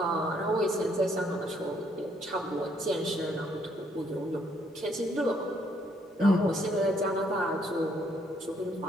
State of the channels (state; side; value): normal; both; correlation 0.69